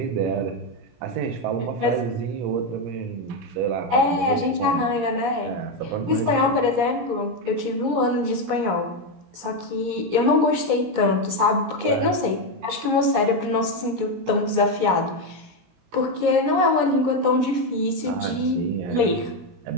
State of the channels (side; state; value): left; late; 17 ms